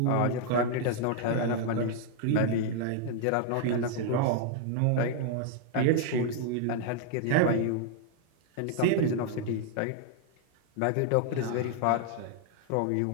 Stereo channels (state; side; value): different; both; correlation 0.00